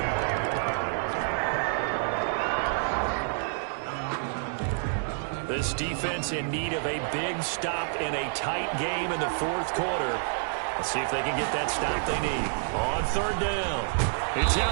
This defense in need of a big stop in a tight game in the fourth quarter. Let's see if they can get that stop they need. On third down, it's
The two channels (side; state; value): left; silent; digital silence